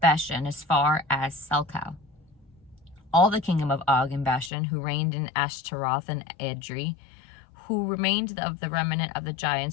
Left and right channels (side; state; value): right; drops out; at 4.5 s